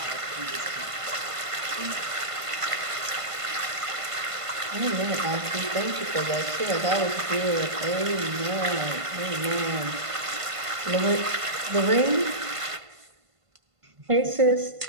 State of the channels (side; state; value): left; late; 1.5 ms